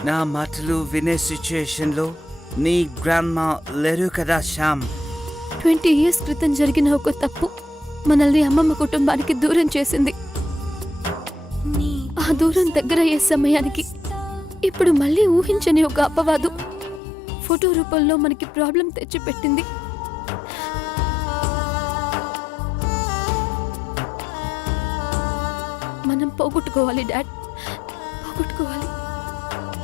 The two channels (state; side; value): drops out; right; at 17.0 s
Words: నా మాటలు వినే సిచ్యుయేషన్ లో నీ గ్రాండ్మా లేరు కదా శ్యామ్. 20 years క్రితం జరిగిన ఒక తప్పు మనల్ని అమ్మమ్మ కుటుంబానికి దూరం చేసింది. ఆ దూరం దగ్గరయ్యే సమయానికి ఇప్పుడు మళ్ళీ ఊహించని ఒక అపవాదు ఫోటో రూపంలో మనకి ప్రాబ్లం తెచ్చిపెట్టింది. మనం పోగొట్టుకోవాలి dad, పోగొట్టుకోవాలి.